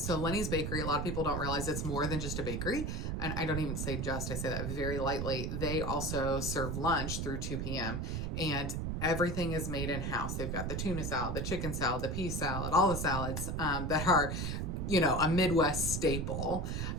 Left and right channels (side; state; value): right; noise; rumble, 2 dB below the sound